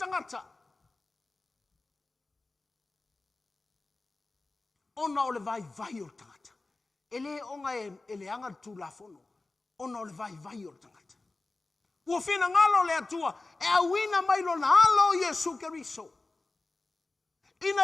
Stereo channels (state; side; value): quieter; right; 3.3 dB